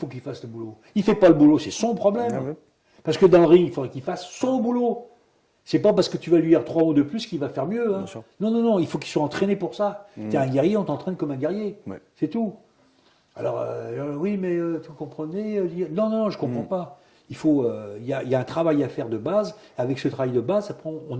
qu'il fasse le boulot. Il ne fait pas le boulot, c'est son problème. Ah ouais. Parce que dans le ring, il faudrait qu'il fasse son boulot. C'est pas parce que tu vas lui dire 3 mots de plus qu'il va faire mieux. Hein. Bien sûr. Non, non, non, il faut qu'il soit entraîné pour ça. Tu es un guerrier, on t'entraîne comme un guerrier. Ouais. C'est tout. Alors, oui, mais vous comprenez non, non, non, je ne comprends pas. Il faut, il y a un travail à faire de base. Avec ce travail de base, après, on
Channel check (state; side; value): identical; both; correlation 1.00